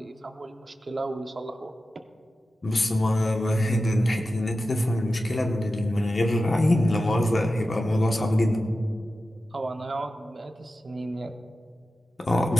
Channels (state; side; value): normal; both; correlation 0.93